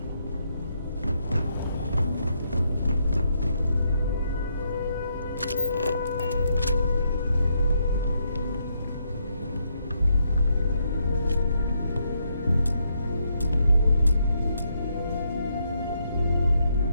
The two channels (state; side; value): inverted; both; correlation -0.77